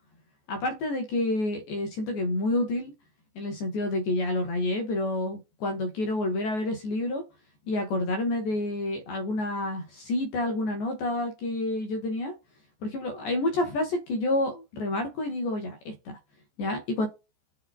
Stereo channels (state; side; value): late; right; 14 ms